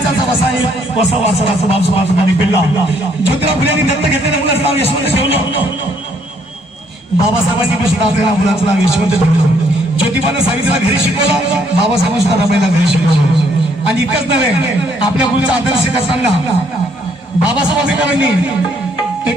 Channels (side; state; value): both; normal; correlation 0.68